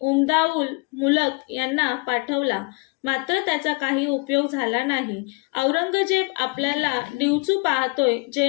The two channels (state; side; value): quieter; right; 29.8 dB